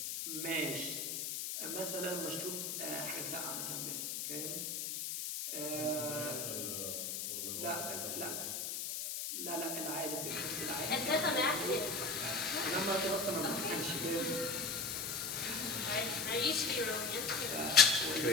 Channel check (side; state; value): left; noise; hiss, 3 dB below the sound